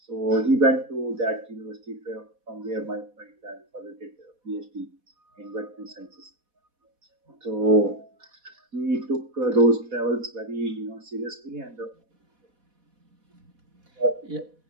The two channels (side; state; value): left; late; 4.1 ms